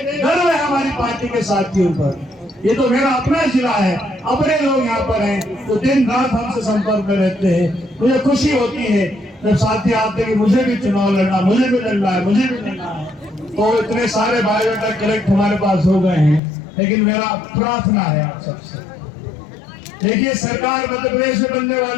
गर्व है हमारी पार्टी के साथियों पर। ये तो मेरा अपना जिला है, अपने लोग यहाँ पर हैं तो दिन रात हमसे संपर्क में रहते हैं। मुझे खुशी होती है जब साथी आते हैं कि मुझे भी चुनाव लड़ना, मुझे भी लड़ना है, मुझे भी लड़ना है। तो इतने सारे बायोडाटा कलेक्ट हमारे पास हो गए हैं, लेकिन मेरा प्रार्थना है आप सबसे, देखिए सरकार मध्य प्रदेश में बनने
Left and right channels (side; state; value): right; drops out; at 16.4 s